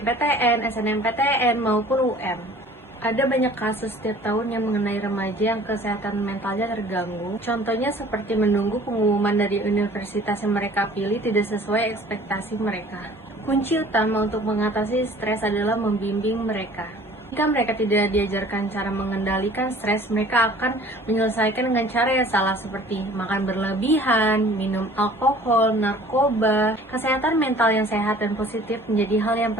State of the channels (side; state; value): both; normal; correlation 0.49